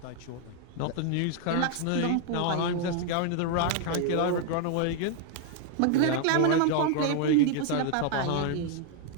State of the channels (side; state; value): both; different; correlation 0.00